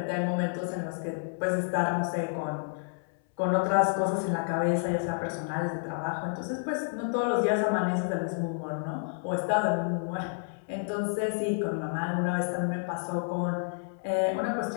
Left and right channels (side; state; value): right; silent; 58 dB below the other